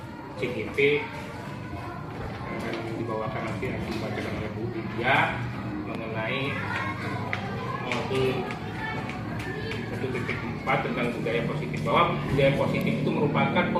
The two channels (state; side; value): identical; both; correlation 1.00